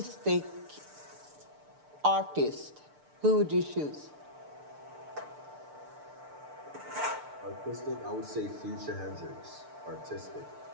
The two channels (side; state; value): left; late; 6.7 ms